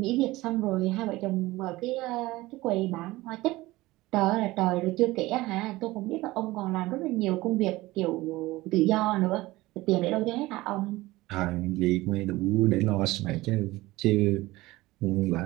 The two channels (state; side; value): quieter; left; 19.0 dB